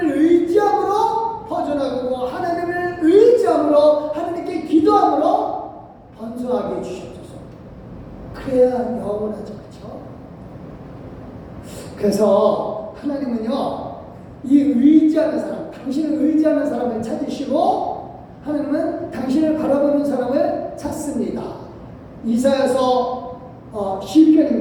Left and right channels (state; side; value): identical; both; correlation 1.00